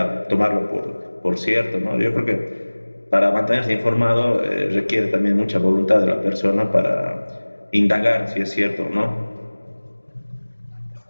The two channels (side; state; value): both; inverted; correlation -1.00